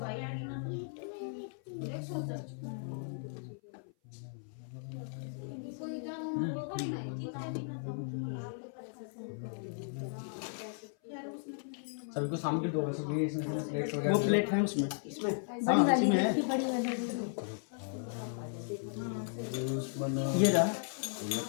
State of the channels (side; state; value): right; silent; 54 dB below the other